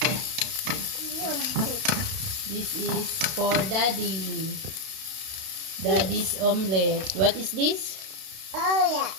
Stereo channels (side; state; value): left; late; 32 ms